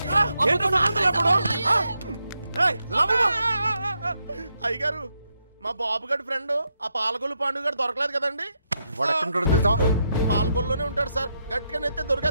సార్. అయ్యగారు, మా బాబుగాడి ఫ్రెండ్ ఆ పాలకొల్లు పాండు గారు దొరకలేదు కదండి. వాడు ఎక్కడుంటాడో తెలుసా? పాలకొల్లోనే ఉంటాడు సార్. గట్టిగా నెత్తే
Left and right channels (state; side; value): inverted; both; correlation -0.81